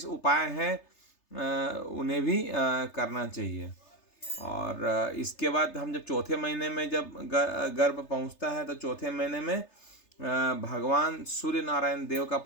उपाय हैं, उन्हें भी करना चाहिए। और इसके बाद हम जब चौथे महीने में जब गर्भ पहुंचता है, तो चौथे महीने में भगवान सूर्य नारायण देव का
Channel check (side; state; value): right; late; 3.3 ms